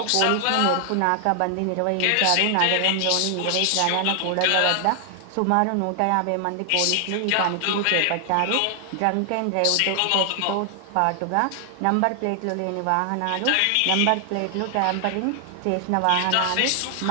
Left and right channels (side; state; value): both; different; correlation 0.00